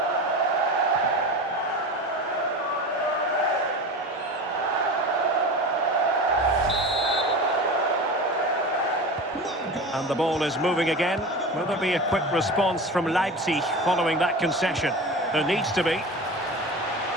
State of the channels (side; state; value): both; normal; correlation 0.30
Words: And the ball is moving again. Will there be a quick response from Leipzig following that concession? There needs to be.